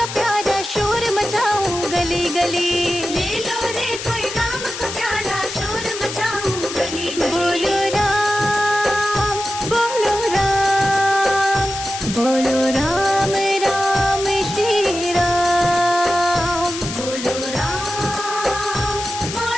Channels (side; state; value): left; noise; hiss, 8 dB below the sound